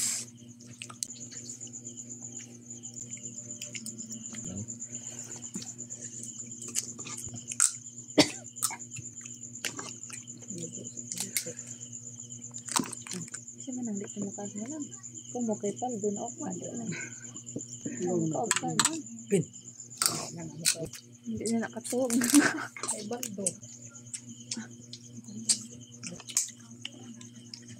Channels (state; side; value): identical; both; correlation 1.00